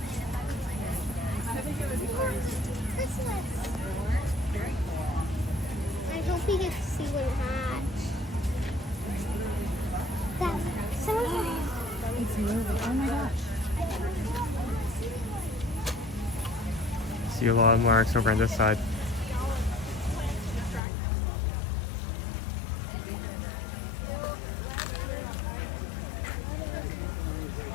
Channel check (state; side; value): drops out; right; at 20.8 s